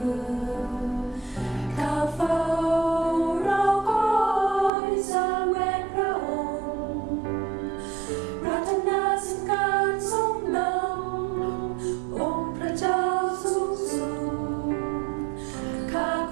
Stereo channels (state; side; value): drops out; left; at 4.7 s